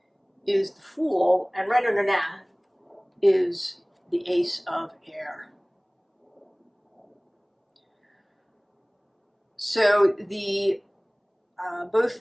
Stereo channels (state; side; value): identical; both; correlation 1.00